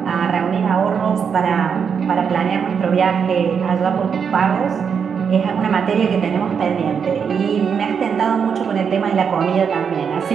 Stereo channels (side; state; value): left; quieter; 6.8 dB